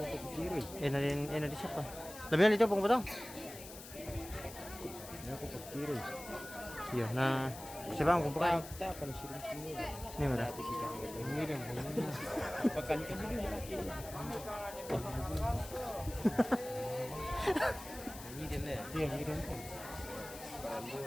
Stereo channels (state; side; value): noise; left; hiss, 14 dB below the sound